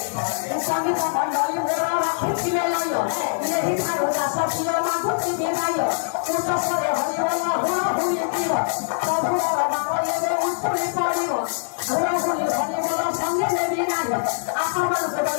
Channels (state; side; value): silent; right; 63 dB below the other